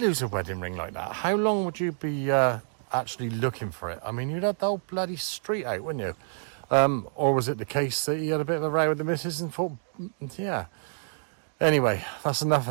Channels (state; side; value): silent; left; 59 dB below the other